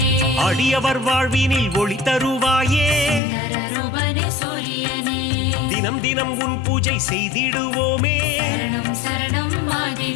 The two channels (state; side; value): drops out; right; at 3.2 s